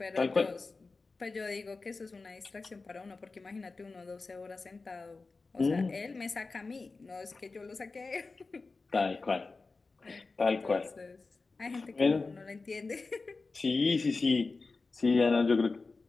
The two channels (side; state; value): right; quieter; 3.9 dB